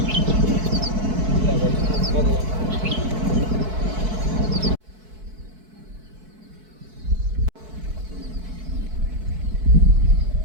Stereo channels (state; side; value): late; left; 4.6 ms